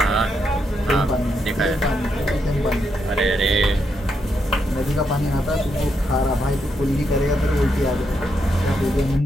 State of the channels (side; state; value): both; normal; correlation 0.80